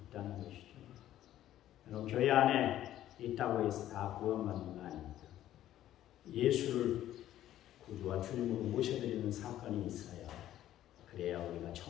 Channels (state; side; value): quieter; right; 12.7 dB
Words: 있다는 것이죠. 여러분, 교회 안에 있다고 해서 다 구원받는 거 아닙니다. 예수를 구주와 주님으로 모셔드리는 사건이 있어야 그래야 우리가